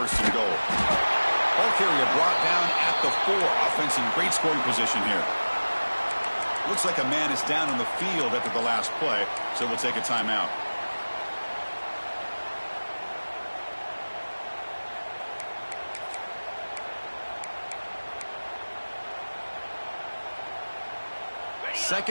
and goal. Ball carrier brought down at the 4. Offense in great scoring position here. Looks like a man is down on the field after the last play, so we'll take a timeout.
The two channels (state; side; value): inverted; both; correlation -1.00